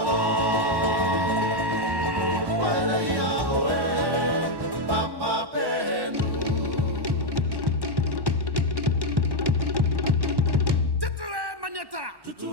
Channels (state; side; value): late; left; 1.1 ms